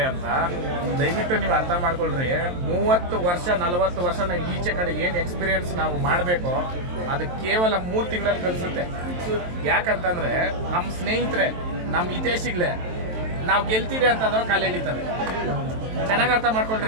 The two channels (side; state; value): left; late; 23 ms